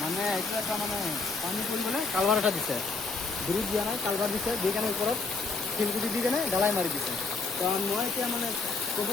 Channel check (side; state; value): right; quieter; 4.2 dB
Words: মানে এইটো এটা মানে পানী পৰিবলৈ কালভাৰ এটা দিছে, ব্ৰিজ দিয়া নাই, কালভাৰ দিছে, দি কেনে ওপৰত শিলগুটি দি কেনে ঢালাই মাৰি দিছে। তো মই এতিয়া মানে ক'ব